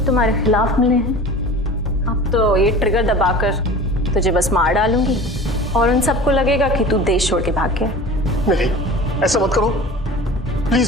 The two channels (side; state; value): both; normal; correlation 0.38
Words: तुम्हारे खिलाफ मिले हैं, अब तो ये ट्रिगर दबाकर तुझे बस मार डालूंगी और उन सबको लगेगा कि तू देश छोड़ के भाग गया। नहीं, ऐसा मत करो